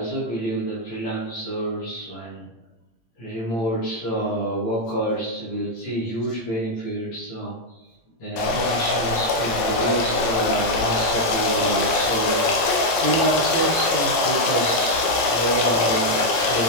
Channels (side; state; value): right; late; 18 ms